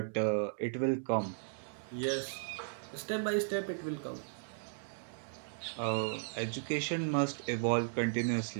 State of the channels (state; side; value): silent; left; digital silence